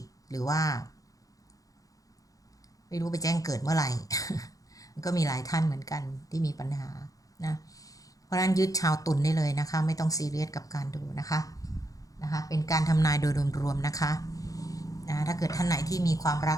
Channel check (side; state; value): right; late; 0.17 ms